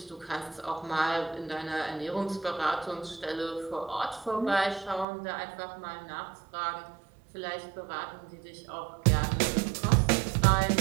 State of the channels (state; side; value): drops out; left; at 5.1 s